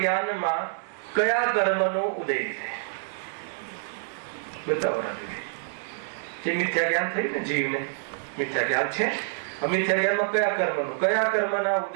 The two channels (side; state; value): left; silent; digital silence